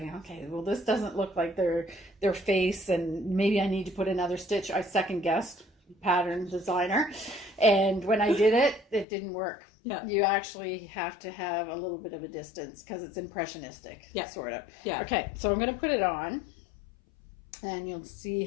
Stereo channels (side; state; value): right; drops out; at 9.1 s